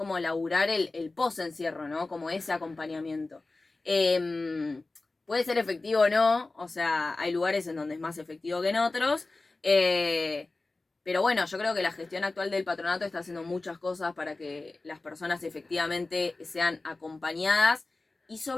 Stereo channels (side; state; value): right; quieter; 3.3 dB